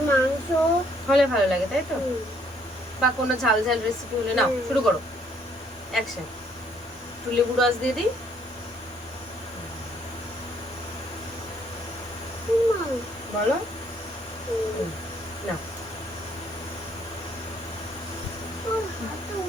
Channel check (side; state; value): both; normal; correlation 0.66